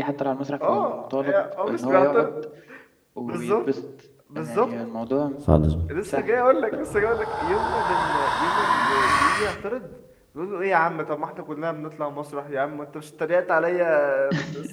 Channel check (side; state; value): both; identical; correlation 1.00